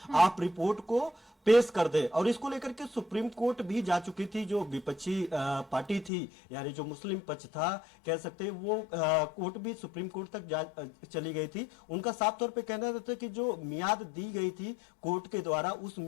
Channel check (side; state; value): right; drops out; at 6.1 s